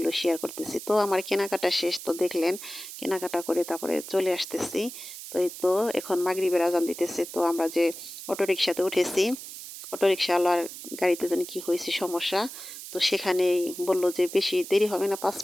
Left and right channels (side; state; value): right; noise; hiss, 12 dB below the sound